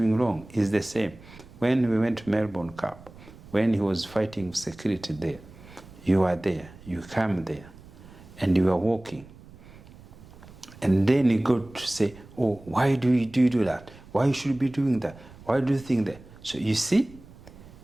wrong. It's the same. When we went to Melbourne Cup, when he was fighting security there, you are there, you come there, and you are walking. And then you go to say, oh, why do you do that? Why should you be doing that? Why do you think that? So you see,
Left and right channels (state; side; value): noise; right; rumble, 20 dB below the sound